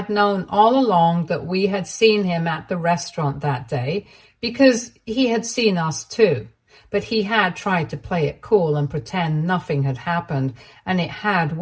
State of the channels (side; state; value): both; identical; correlation 1.00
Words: known all along that we had seen him at the restaurant that day because he had seen us too. But he had tried to play it cool and pretend nothing had happened, and it had